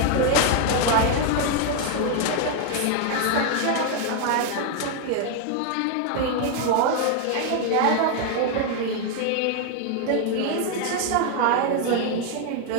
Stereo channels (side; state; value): both; different; correlation 0.00